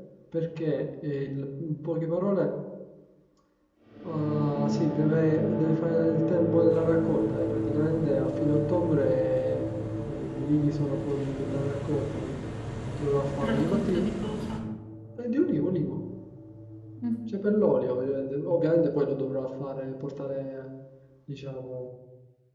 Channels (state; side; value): identical; both; correlation 1.00